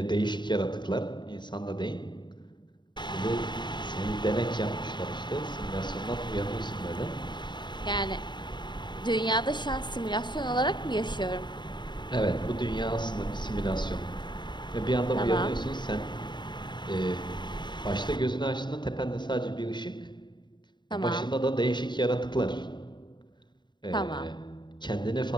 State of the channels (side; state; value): right; late; 0.22 ms